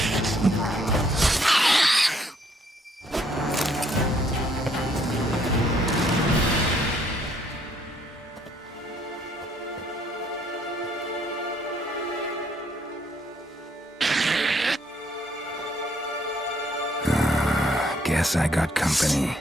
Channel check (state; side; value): normal; both; correlation 0.67